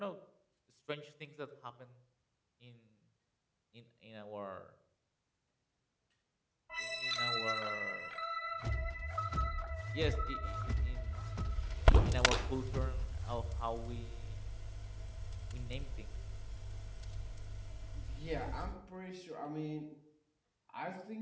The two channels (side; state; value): both; identical; correlation 1.00